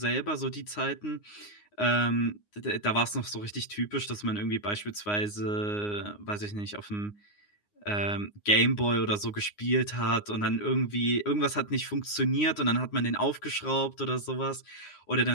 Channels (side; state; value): right; late; 9.7 ms